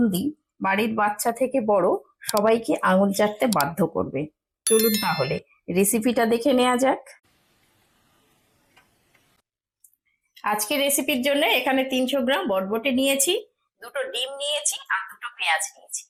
বাড়ির বাচ্চা থেকে বড় সবাইকে আঙুল চাটতে বাধ্য করবে। চলুন তাহলে রেসিপিটা দেখে নেওয়া যাক। আজকে রেসিপির জন্য এখানে 300 গ্রাম বটবটি নিয়েছি, দুটো ডিম নিয়েছি আর দুটো পেঁয়াজ নিয়েছি।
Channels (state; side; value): identical; both; correlation 1.00